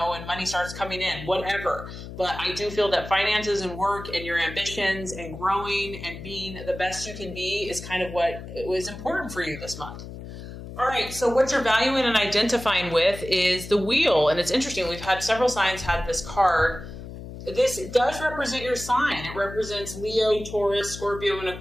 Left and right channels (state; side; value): noise; left; hum, 11 dB below the sound